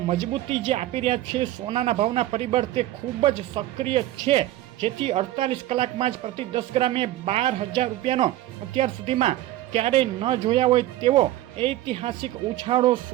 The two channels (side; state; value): left; quieter; 14.8 dB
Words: મજબૂતી જે આપી રહ્યા છે સોનાના ભાવના પરિબળ તે ખૂબ જ સક્રિય છે. જેથી 48 કલાકમાં જ પ્રતિ 10 ગ્રામે ₹12,000નો અત્યાર સુધીમાં ક્યારેય ન જોયા હોય તેવો ઐતિહાસિક ઉછાળો